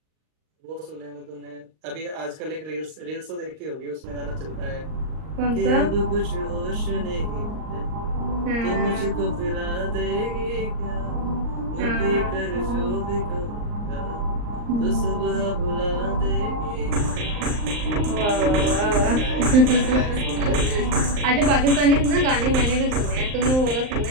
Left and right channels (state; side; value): late; left; 39 ms